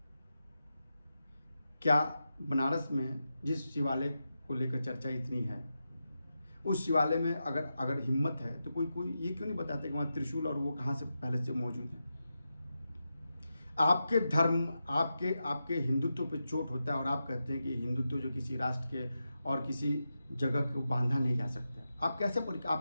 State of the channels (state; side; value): inverted; both; correlation -0.89